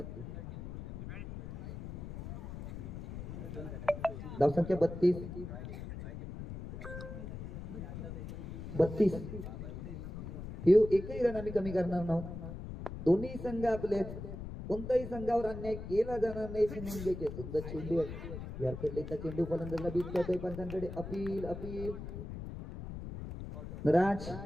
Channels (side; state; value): left; noise; rumble, 8 dB below the sound